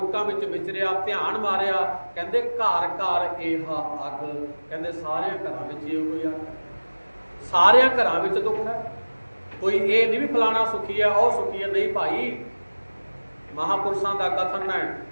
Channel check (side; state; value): both; inverted; correlation -1.00